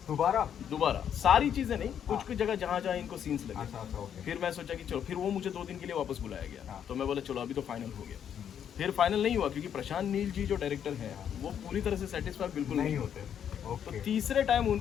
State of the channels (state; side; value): quieter; right; 8.9 dB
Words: दोबारा सारी चीज़ें नहीं, कुछ जगह जहाँ इनको सीन्स लगे। फिर मैं सोचा कि चलो, फिर वो मुझे 2 दिन के लिए वापस बुलाया गया, तो मैं बोला चलो अभी तो फाइनल हो गया। फिर फाइनल नहीं हुआ क्योंकि प्रशांत नील जी जो डायरेक्टर हैं वो पूरी तरह से सेटिस्फाई बिल्कुल नहीं होते। तो तीसरे टाइम